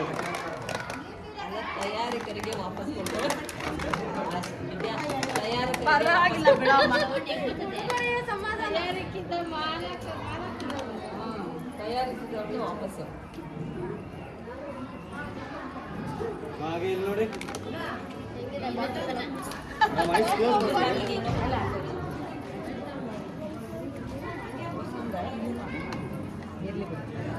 ತಯಾರಿಕರಿಗೆ ವಾಪಸ್ ಕೊಡ್ತಾರೆ. ಪರವಾಗಿಲ್ಲ ಬಿಡಮ್ಮ. ತಯಾರಿಸಿದವ್ರಿಗೆ ವಾಪಸ್ಸು. ನೋಡಿ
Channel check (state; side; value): identical; both; correlation 1.00